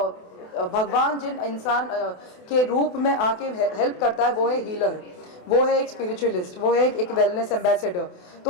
भगवान जिन इंसान के रूप में आके हेल्प करता है, वो है हीलर, वो है एक स्पिरिचुअलिस्ट, वो है एक वेलनेस एम्बेसडर.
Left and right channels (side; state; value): right; late; 28 ms